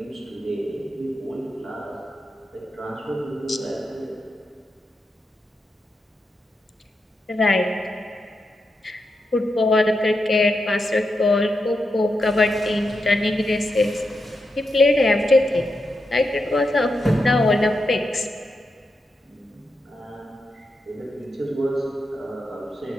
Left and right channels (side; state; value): both; normal; correlation 0.86